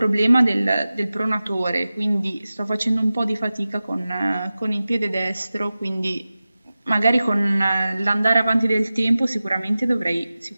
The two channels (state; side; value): inverted; both; correlation -0.95